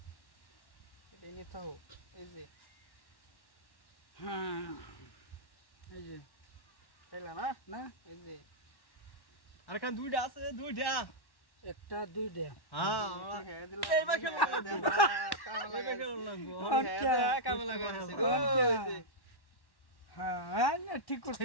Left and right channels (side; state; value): right; late; 1.1 ms